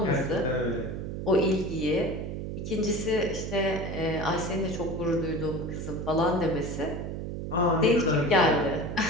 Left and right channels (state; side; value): noise; right; hum, 5 dB below the sound